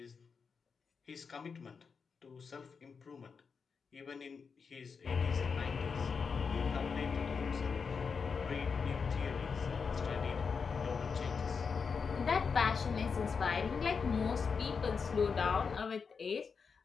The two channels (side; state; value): right; quieter; 5.6 dB